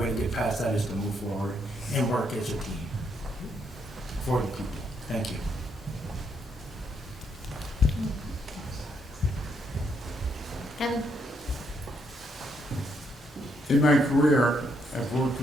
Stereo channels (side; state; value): both; normal; correlation 0.75